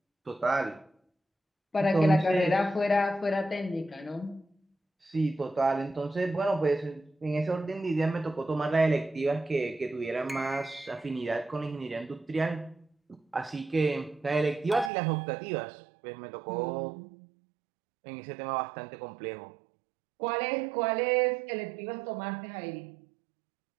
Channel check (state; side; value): drops out; left; at 14.9 s